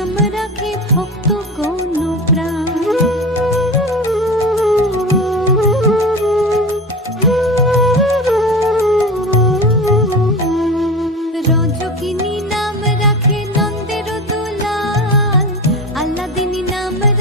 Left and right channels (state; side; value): normal; both; correlation 0.28